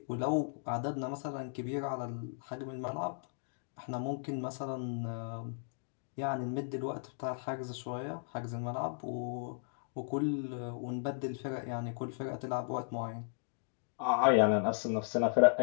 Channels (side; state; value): right; silent; digital silence